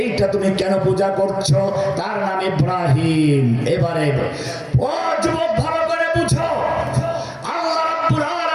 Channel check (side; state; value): both; identical; correlation 1.00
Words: তুমি কেন পূজা করছো? তার নাম ইব্রাহিম। এবারে ও যুবক ভালো করে বুঝো, আল্লাহ রাব্বুল